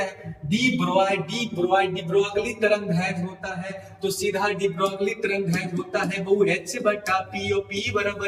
हैं। डी ब्रोगली तरंगदैर्घ्य होता है, तो सीधा डी ब्रोगली तरंगदैर्घ्य होता है वो H/P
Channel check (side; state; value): both; identical; correlation 1.00